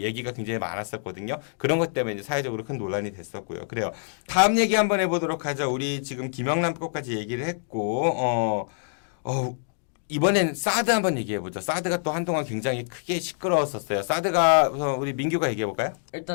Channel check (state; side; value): silent; right; digital silence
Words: 굉장히 많았었거든요. 그런 것 때문에 이제 사회적으로 큰 논란이 됐었고요. 그래요. 다음 얘기 한번 해보도록 하죠. 우리 지금 김영란법까지 얘기를 했고, 이번엔 사드 한번 얘기해보죠. 사드가 또 한동안 굉장히 크게 시끄러웠었어요. 사드가 우리 민규가 얘기해볼까요?